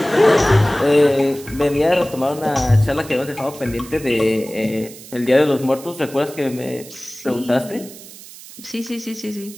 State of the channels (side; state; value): right; noise; hiss, 17 dB below the sound